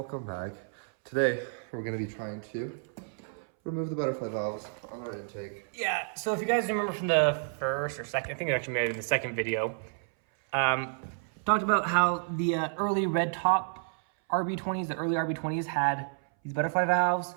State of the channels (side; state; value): left; silent; 58 dB below the other